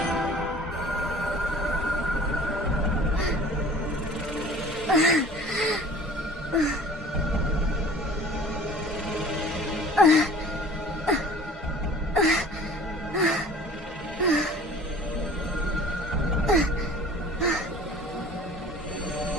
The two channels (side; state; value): both; normal; correlation 0.46